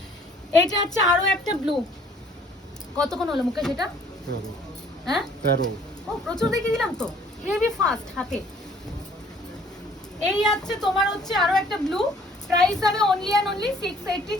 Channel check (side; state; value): both; normal; correlation 0.58